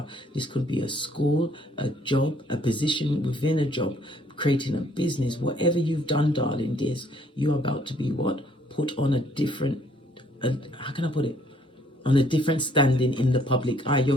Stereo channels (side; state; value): both; normal; correlation 0.63